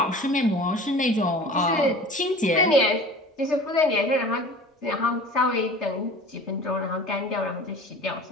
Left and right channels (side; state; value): both; normal; correlation 0.41